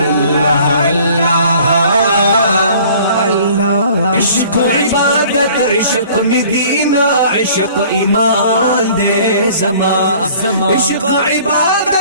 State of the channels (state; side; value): inverted; both; correlation -0.51